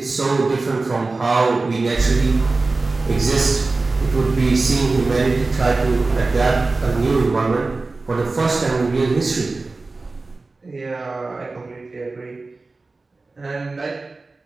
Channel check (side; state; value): left; quieter; 3.6 dB